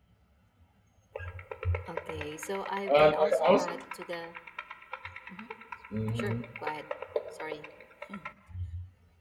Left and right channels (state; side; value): identical; both; correlation 1.00